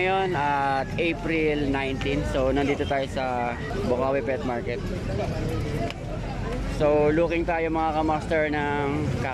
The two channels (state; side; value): identical; both; correlation 1.00